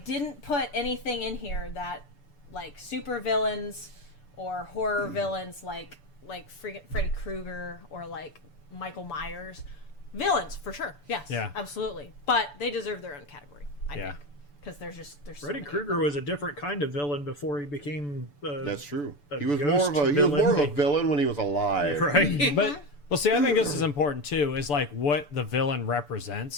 put anything in here that, like, super villains or horror villains like Freddy Krueger or, like, Michael Myers. Villains, for sure. Yes. Yeah. Absolutely. But they deserve their own category, I Yeah. think. Because there's so Freddy many. Krueger was a different kind of villain before he became. That's true. a He was ghost more of a villain when he was alive. right. But well, see, I think this is important too. Is like what the villain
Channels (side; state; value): right; late; 6.9 ms